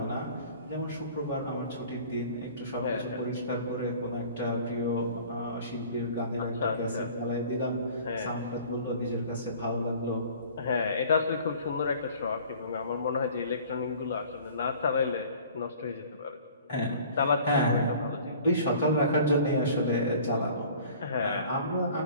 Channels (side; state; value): both; inverted; correlation -0.48